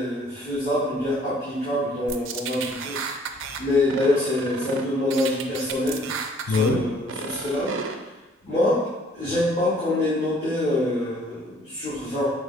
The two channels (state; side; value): normal; both; correlation 0.58